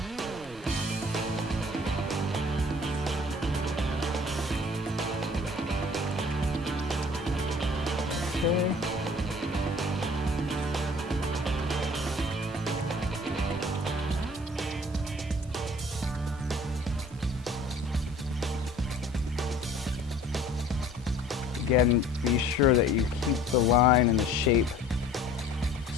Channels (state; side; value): normal; both; correlation 0.50